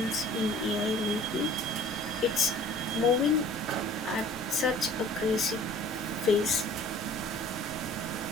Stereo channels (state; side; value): normal; both; correlation 0.49